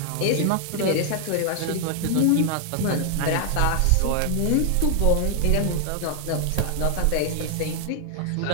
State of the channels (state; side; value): different; both; correlation 0.00